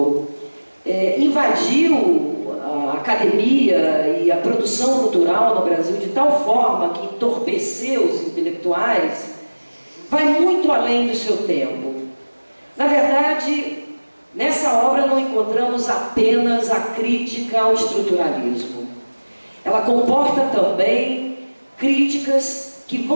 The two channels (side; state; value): both; inverted; correlation -1.00